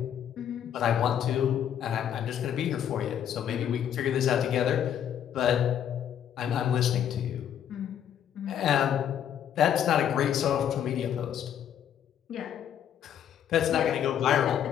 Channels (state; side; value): quieter; right; 9.5 dB